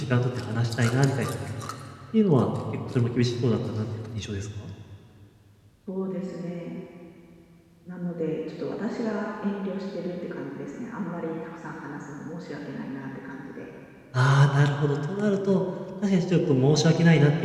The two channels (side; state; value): both; identical; correlation 1.00